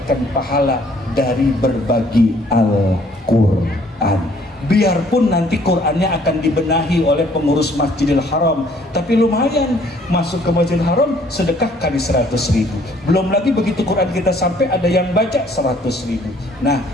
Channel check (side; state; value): both; normal; correlation 0.60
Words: pahala dari berbagi Al-Quran. Biarpun nanti Qurannya akan dibenahi oleh pengurus Masjidil Haram, tapi lumayan masuk ke Masjidil Haram sedekah kali 100.000. Belum lagi begitu Quran kita sampai ada yang baca 100.000. Nah,